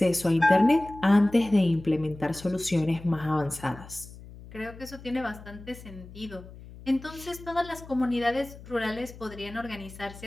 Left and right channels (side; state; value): left; noise; hum, 17 dB below the sound